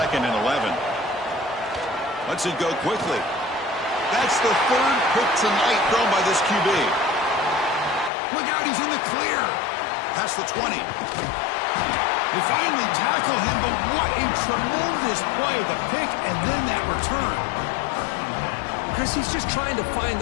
and 11. Lets it go quickly. That's the 3rd pick tonight thrown by this QB. Look out, he's in the clear. Past the 20. They finally tackle him, but what a tremendous play. The pick and then that return. Chris, he's just trying to find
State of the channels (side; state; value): right; drops out; at 8.1 s